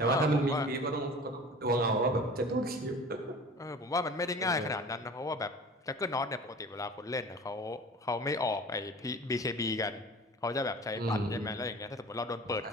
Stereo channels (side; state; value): both; normal; correlation 0.41